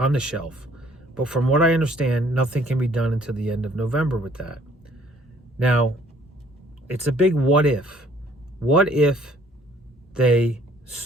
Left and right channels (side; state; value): both; normal; correlation 0.60